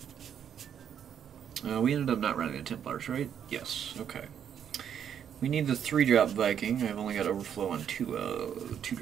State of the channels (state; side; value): quieter; left; 8.7 dB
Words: We ended up not running the Templars, right? Yes. Okay. We need the 3-drop Viking. I've only got overflow on 2